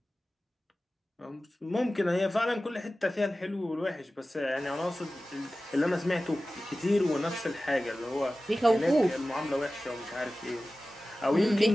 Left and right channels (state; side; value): normal; both; correlation 0.96